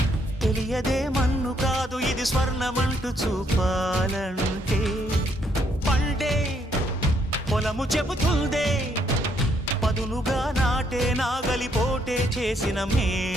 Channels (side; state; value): both; normal; correlation 0.72